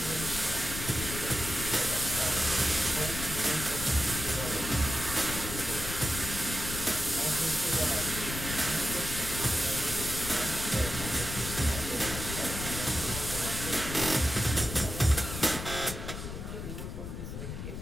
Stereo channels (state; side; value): noise; left; rumble, 7 dB below the sound